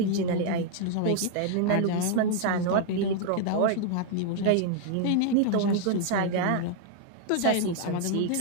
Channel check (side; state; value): both; different; correlation 0.00